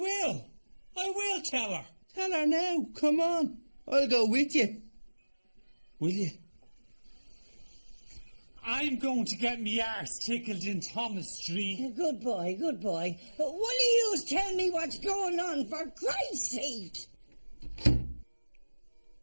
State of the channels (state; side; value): inverted; both; correlation -1.00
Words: tell her. Tell her now. Come on. I'll go with you. Will you? I'm going to get me arse tickled in Thomas Street. Good boy, good boy. Will you tell me what's going on, for Christ's sake?